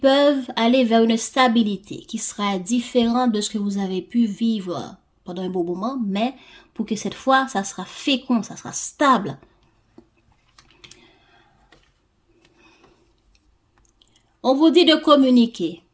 aller vers une stabilité qui sera différente de ce que vous avez pu vivre pendant un bon moment, mais pour que cette fois, ça sera fécond, ça sera stable. On vous dit de communiquer,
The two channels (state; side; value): identical; both; correlation 1.00